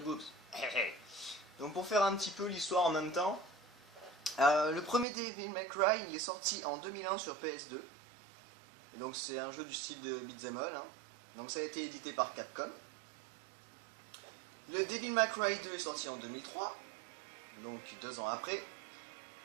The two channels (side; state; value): left; drops out; at 5.1 s